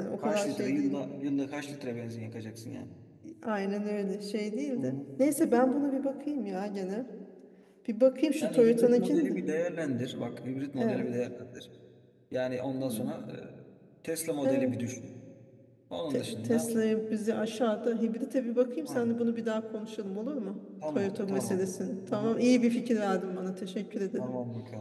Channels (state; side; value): identical; both; correlation 1.00